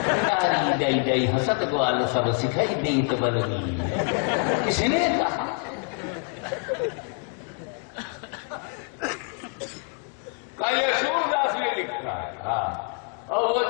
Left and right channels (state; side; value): quieter; right; 38.0 dB